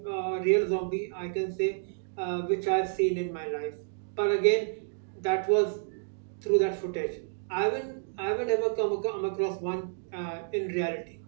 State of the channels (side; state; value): left; silent; digital silence